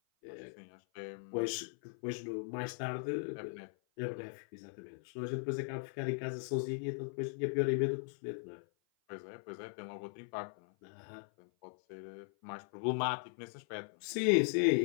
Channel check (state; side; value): silent; right; 52 dB below the other